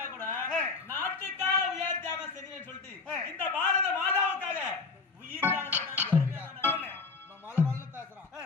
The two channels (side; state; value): right; quieter; 4.3 dB